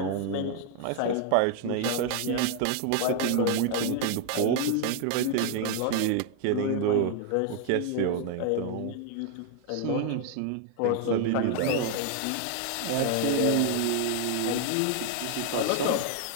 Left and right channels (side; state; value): both; different; correlation 0.00